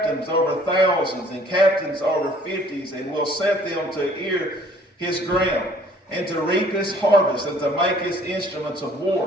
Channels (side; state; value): both; normal; correlation 0.56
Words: over thousands, and captains over fifties, and will set them to ear his ground, and to reap his harvest, and to make his instruments of